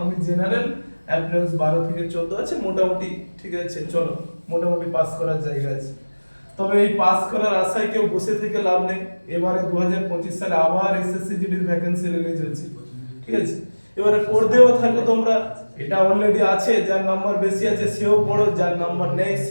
আমি জেনারেল অ্যাপ্রেন্স 12 থেকে 14 আছে, মোটামুটি ঠিক আছে, চলো মোটামুটি পাস করার জায়গা আছে। তবে এই পাস করার আশায় কেউ বসে থেকে লাভ নেই। এবারে 2025 সালে আবার এসএসসি জিডির ভ্যাকেন্সি রিলিজ হচ্ছে, ঠিক আছে। এবারে পড়তেও থাকো তোমরা, এটা অলরেডি আছে, যার নাম্বার বেশি আছে সেও পড়ো, যার নাম্বার নেই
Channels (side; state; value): both; inverted; correlation -1.00